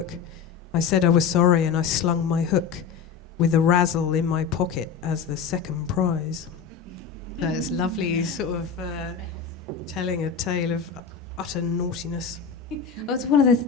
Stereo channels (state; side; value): quieter; right; 6.5 dB